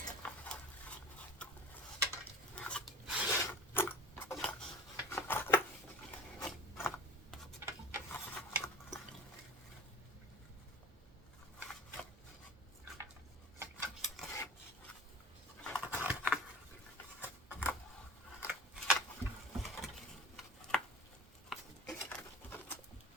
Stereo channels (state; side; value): normal; both; correlation 0.40